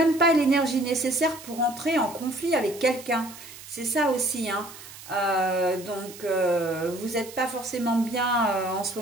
pas l'énergie nécessaire pour entrer en conflit avec quelqu'un, c'est ça aussi, hein. Donc vous n'êtes pas forcément bien en ce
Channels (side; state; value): right; noise; hiss, 16 dB below the sound